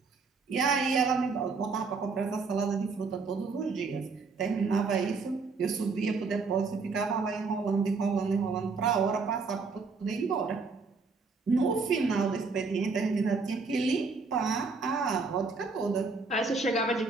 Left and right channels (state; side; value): quieter; left; 4.4 dB